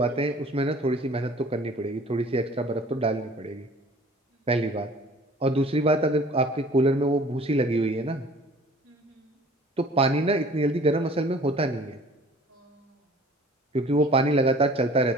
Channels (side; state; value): both; normal; correlation 0.49